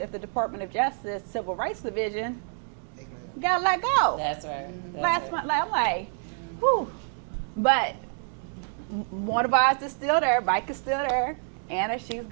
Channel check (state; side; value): silent; left; 60 dB below the other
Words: the Department of Justice Civil Rights Division, got let go. That's right. I'm like, whew. But one of ours is still there. Mike is still there. Anna, she's